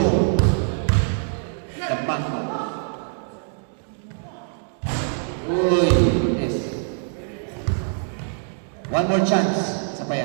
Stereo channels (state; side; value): silent; left; digital silence